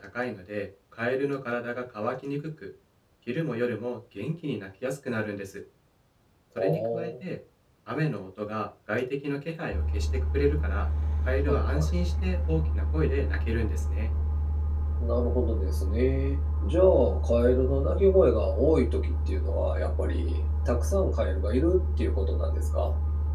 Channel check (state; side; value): identical; both; correlation 1.00